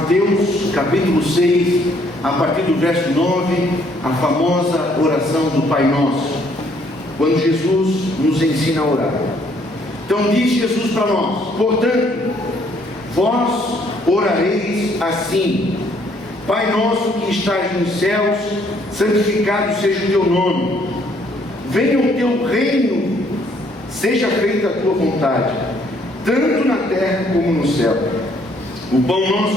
capítulo 6, a partir do verso 9, a famosa oração do Pai Nosso, quando Jesus nos ensina a orar. Então diz Jesus para nós: portanto, vós orareis assim: Pai nosso que estás nos céus, santificado seja o teu nome, venha o teu reino, seja feita a tua vontade, tanto na terra como no céu. O pão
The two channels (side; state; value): both; normal; correlation 0.65